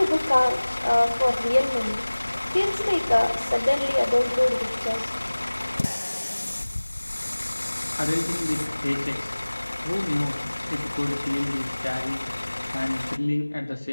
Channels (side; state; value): both; inverted; correlation -1.00